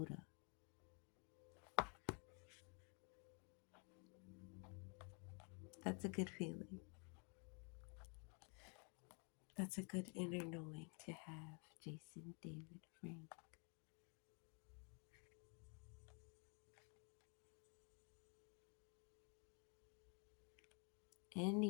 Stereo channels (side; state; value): right; quieter; 36.2 dB